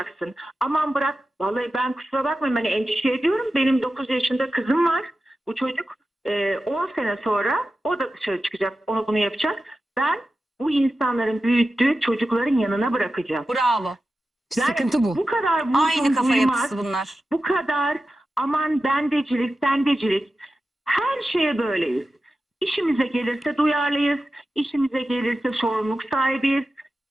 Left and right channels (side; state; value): both; normal; correlation 0.92